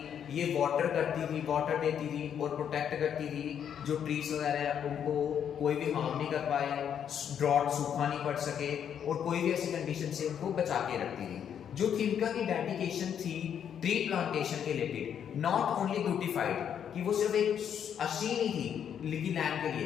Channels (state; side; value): quieter; right; 8.6 dB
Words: ये वाटर करती थी, वाटर देती थी और प्रोटेक्ट करती थी जो ट्रीज वगैरह हैं उनको कोई भी हार्म नहीं कर पाए, ड्रॉट सूखा नहीं पड़ सके और कोई भी ऐसी कंडीशन से उनको बचा के रखती थी। जो थिमका की डेडिकेशन थी ट्री प्लांटेशन के रिलेटेड, नॉट ओनली ब्यूटिफाइड कि वो सिर्फ एक अच्छी नहीं थी लिखी लैंड के